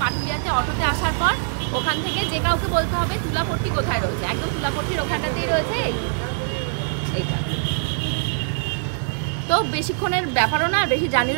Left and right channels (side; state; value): left; silent; 64 dB below the other